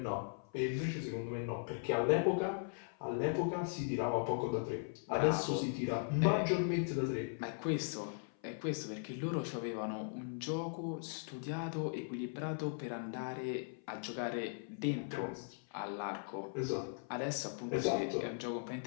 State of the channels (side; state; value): right; silent; 52 dB below the other